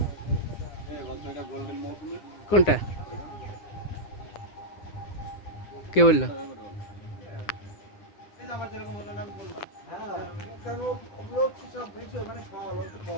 কোনটা কে বললো?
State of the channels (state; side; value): late; right; 9.9 ms